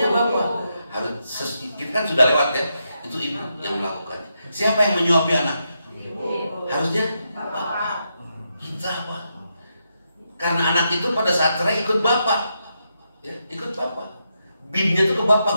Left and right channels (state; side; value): inverted; both; correlation -0.83